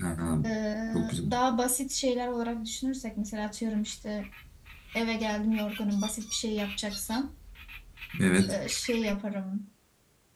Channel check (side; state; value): both; identical; correlation 1.00